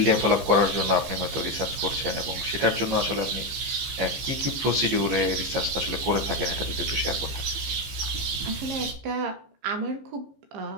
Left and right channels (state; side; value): late; left; 15 ms